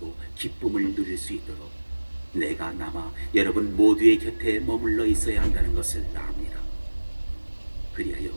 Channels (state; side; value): inverted; both; correlation -1.00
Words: 기쁨을 누릴 수 있도록 내가 남아 여러분 모두의 곁에 머물러 있어야 한다는 것을 압니다.